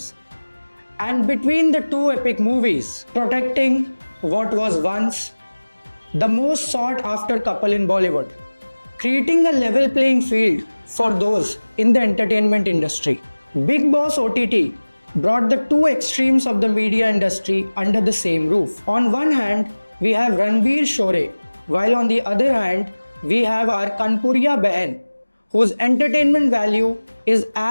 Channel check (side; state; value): both; inverted; correlation -1.00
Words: And between the two epic movies, protecting what was once the most sought after couple in Bollywood, creating a level playing field for those in the entertainment industry. Big Boss OTT brought the two extremes of the media industry under the same roof. On one hand, we have Ranveer Shore, while on the other hand, we have our Kanpuriya Behan, whose entertainment value is